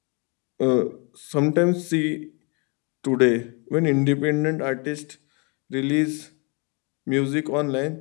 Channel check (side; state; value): right; quieter; 33.1 dB